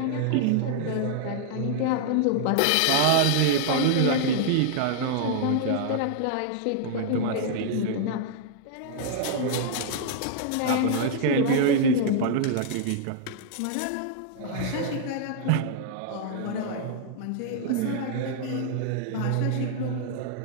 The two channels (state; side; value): different; both; correlation -0.01